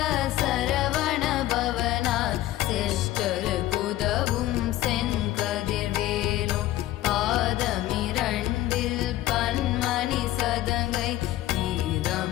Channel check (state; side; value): quieter; right; 15.0 dB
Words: சரவண பவனார் சிஷ்டரு குதவும் செங்கதிர்வேலும் பாதமிரண்டில் பன்மணி சதங்கை